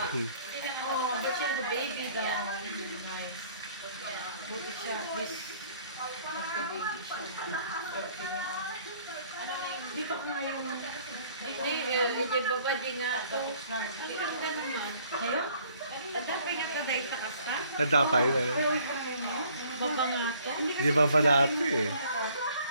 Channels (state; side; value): inverted; both; correlation -0.58